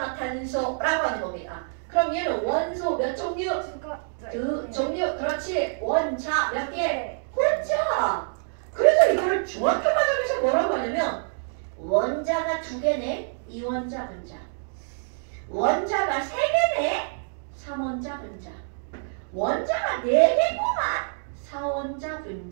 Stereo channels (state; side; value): silent; left; digital silence